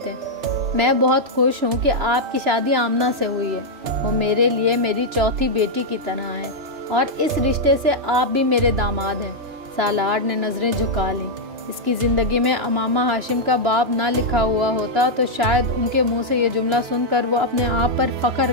میں بہت خوش ہوں کہ آپ کی شادی آمنہ سے ہوئی ہے، وہ میرے لیے میری چوتھی بیٹی کی طرح ہے، اور اس رشتے سے آپ بھی میرے داماد ہیں۔ سالار نے نظریں جھکا لیں۔ اس کی زندگی میں امامہ ہاشم کا باب نہ لکھا ہوا ہوتا تو شاید ان کے منہ سے یہ جملہ سن کر وہ اپنے آپ پر فخر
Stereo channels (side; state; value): left; late; 2.9 ms